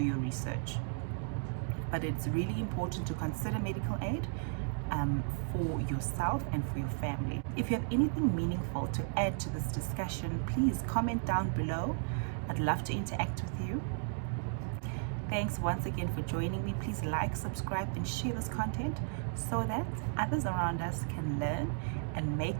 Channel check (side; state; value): left; silent; 55 dB below the other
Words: research. But it's really important to consider medical aid for yourself and for your family. If you have anything meaningful to add to this discussion, please comment down below. I'd love to interact with you. Thanks once again for joining me. Please like, subscribe, and share this content so that others around us can learn and make